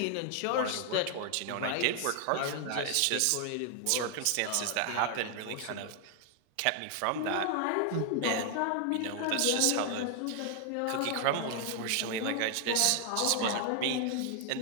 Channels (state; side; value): different; both; correlation 0.00